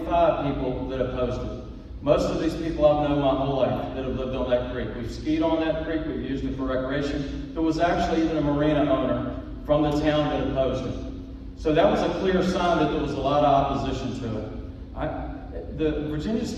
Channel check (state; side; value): identical; both; correlation 1.00